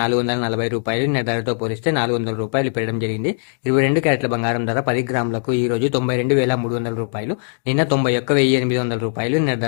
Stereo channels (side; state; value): right; silent; digital silence